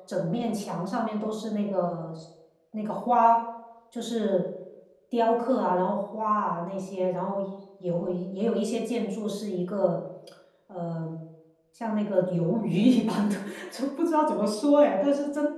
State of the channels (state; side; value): identical; both; correlation 1.00